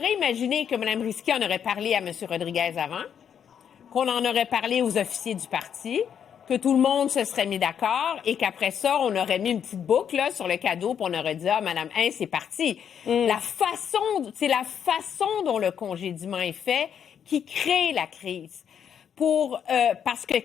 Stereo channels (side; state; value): right; quieter; 8.3 dB